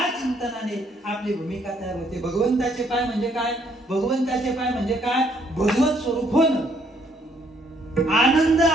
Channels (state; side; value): normal; both; correlation 0.68